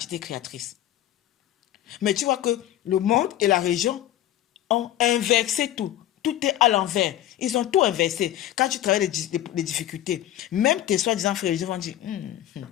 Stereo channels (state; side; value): quieter; right; 12.8 dB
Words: créatrice. Mais tu vois que le monde et la région ont inversé tout. Tout est à l'envers. Ils ont tout inversé. Quand tu travailles les difficultés, même tes soi-disant frères religieux vont dire